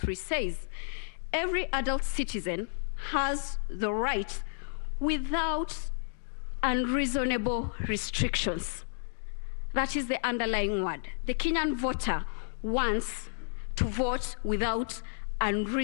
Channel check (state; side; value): silent; right; digital silence